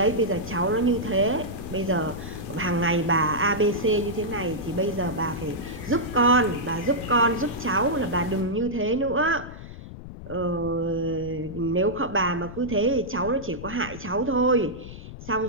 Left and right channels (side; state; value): left; noise; rumble, 13 dB below the sound